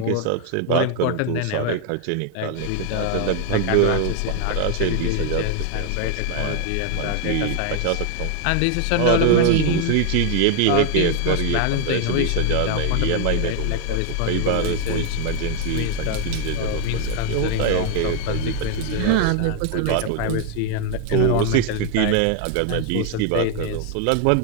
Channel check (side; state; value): both; different; correlation 0.00